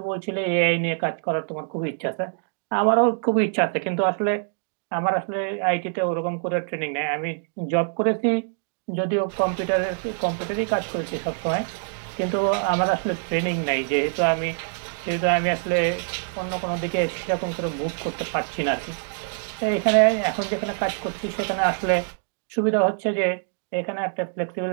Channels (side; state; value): left; silent; digital silence